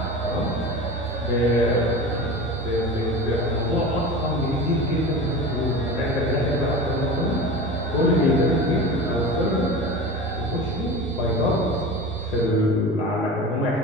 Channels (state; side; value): normal; both; correlation 0.31